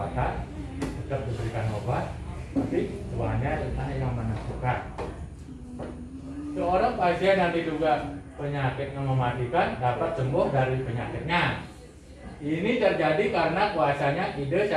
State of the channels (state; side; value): identical; both; correlation 1.00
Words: tetap diberikan obat, tapi Tuhannya yang menentukan. Seorang pasien yang diduga penyakitnya mematikan dapat sembuh dari penyakitnya. Ini terjadi karena kuasanya ide